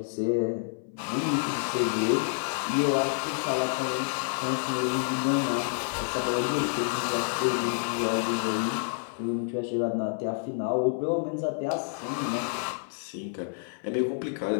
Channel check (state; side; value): silent; right; 59 dB below the other